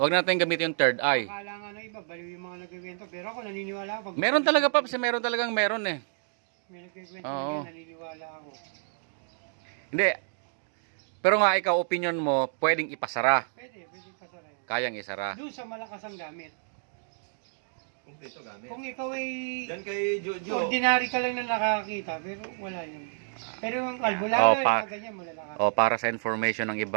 na natin gamitin yung third eye. Akala nga ng iba, baliw yung mga nagkikwento. Pero ako naniniwala ako. Meron talaga, Paps, meron talagang meron eh. May nagkikwento Oo. na naniniwala ako. Hindi. Pero nga ikaw, opinion mo, pwedeng ipasara. Pwede pasara yan. Kayang isara. Doon sa malakas ang gamit. Ito gamit. Kung ikaw ay Yan kay Jojo. ordinary ka lang na nakakita, pero wala yun. Pero yung albularyo, pa- yung ganyan, malalakas. O para sa information ng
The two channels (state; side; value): silent; left; digital silence